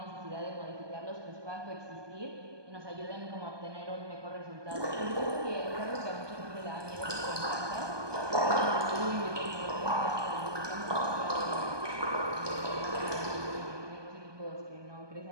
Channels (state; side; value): late; left; 1.2 ms